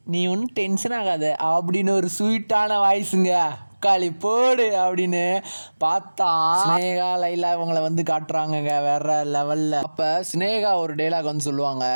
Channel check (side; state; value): both; inverted; correlation -1.00